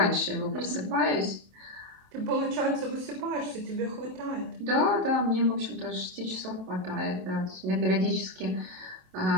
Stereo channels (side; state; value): left; late; 27 ms